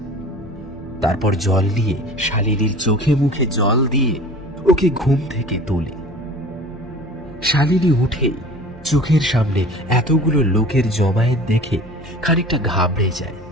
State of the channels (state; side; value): normal; both; correlation 0.42